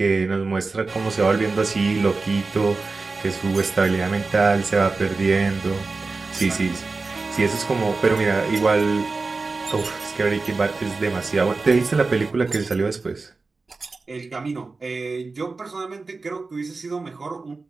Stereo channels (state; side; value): quieter; left; 3.9 dB